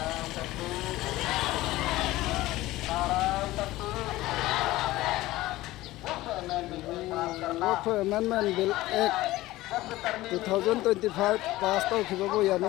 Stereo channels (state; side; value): quieter; right; 17.4 dB